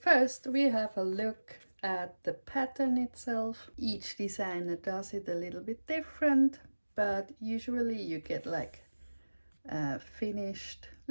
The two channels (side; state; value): both; inverted; correlation -1.00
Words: First, we have a look at the pattern itself. Each designer does it a little bit different, but usually you get like a finished